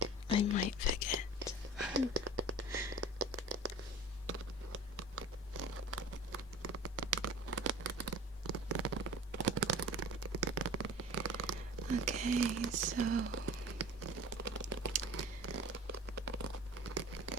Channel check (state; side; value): normal; both; correlation 0.39